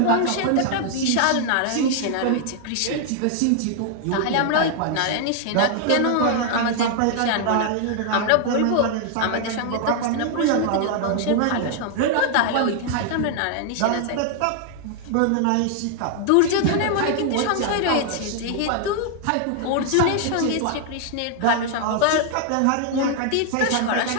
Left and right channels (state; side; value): different; both; correlation 0.00